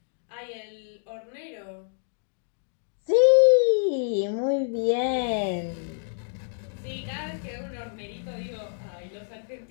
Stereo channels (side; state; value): right; silent; digital silence